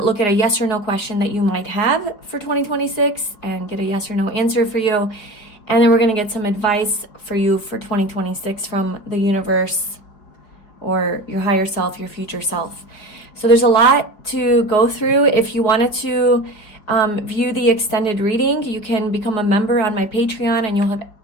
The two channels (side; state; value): right; late; 4.9 ms